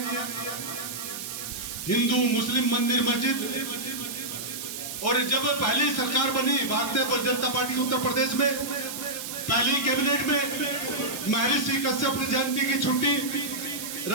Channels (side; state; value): right; noise; hiss, 7 dB below the sound